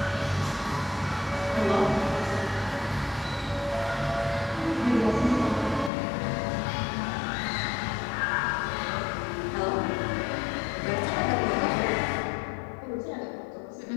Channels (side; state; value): right; drops out; at 5.9 s